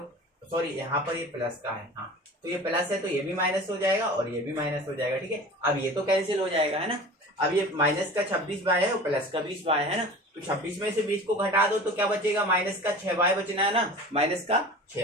सॉरी यहाँ पर ये प्लस का है, हाँ, तो ये प्लस है तो ये भी माइनस हो जाएगा और ये भी माइनस हो जाएगा, ठीक है। अब ये तो कैंसिल हो जाएगा, है ना। अब ये माइनस का 26 बाय है और प्लस का 20 बाय है ना, तो 26 में से 20 को घटा दो तो क्या बचेगा, माइनस का 6 बाय बचना है ना, माइनस का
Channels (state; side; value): normal; both; correlation 0.38